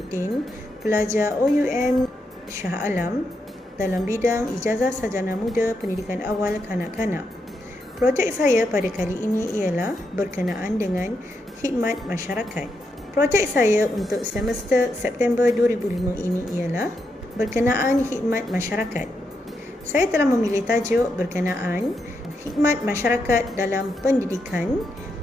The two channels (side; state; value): both; normal; correlation 0.83